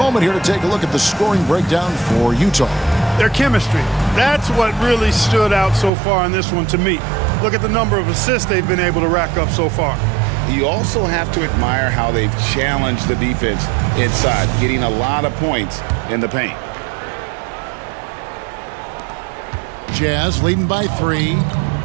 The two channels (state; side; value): drops out; left; at 5.9 s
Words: here to take a look at the scoring breakdown for Utah. Their chemistry. That's what really stood out so far in this one to me. Look at the number of assists they've been able to rack up so far. You also have to admire how they've challenged the defense inside, getting a lot of points in the paint. Jazz leading by 3.